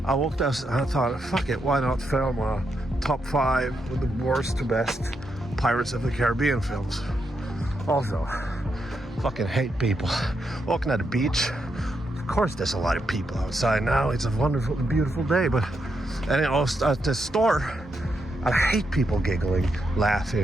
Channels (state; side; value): normal; both; correlation 0.82